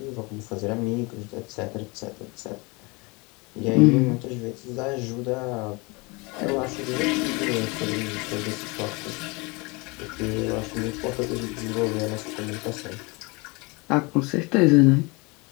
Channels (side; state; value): right; quieter; 27.2 dB